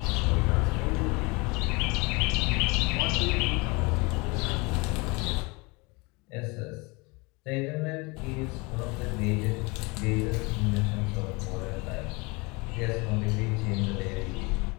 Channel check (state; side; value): quieter; right; 26.9 dB